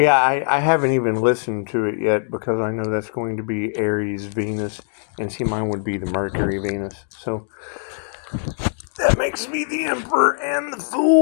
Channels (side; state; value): right; silent; digital silence